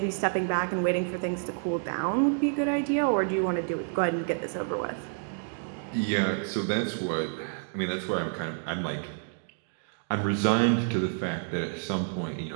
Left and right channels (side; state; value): left; silent; digital silence